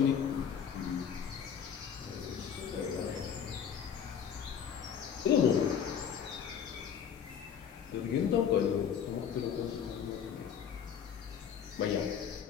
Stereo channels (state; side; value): quieter; right; 8.1 dB